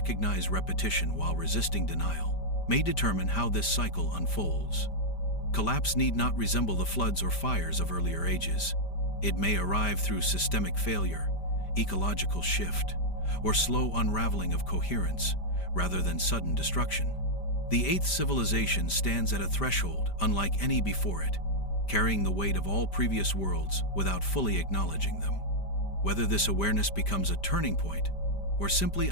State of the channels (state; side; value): late; right; 5.1 ms